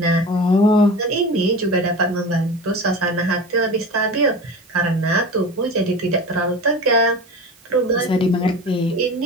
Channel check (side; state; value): right; noise; hiss, 29 dB below the sound